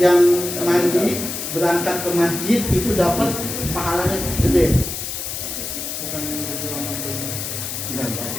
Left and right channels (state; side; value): noise; left; hiss, 5 dB below the sound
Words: mandi berangkat ke masjid itu dapat pahalanya gede. Bukan yang berjualan mandi. Enggak.